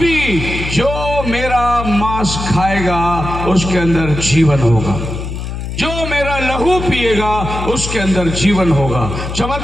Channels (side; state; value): left; noise; hum, 6 dB below the sound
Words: जो मेरा मांस खाएगा उसके अंदर जीवन होगा, जो मेरा लहू पिएगा उसके अंदर जीवन होगा।